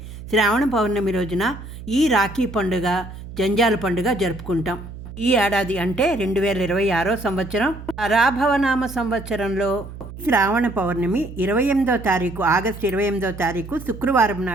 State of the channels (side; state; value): right; noise; hum, 13 dB below the sound